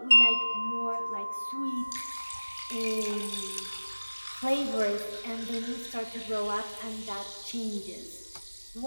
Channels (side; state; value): both; inverted; correlation -1.00